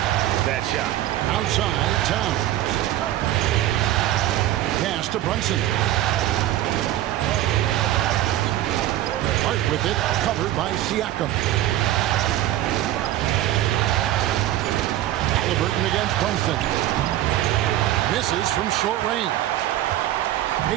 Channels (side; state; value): left; quieter; 13.7 dB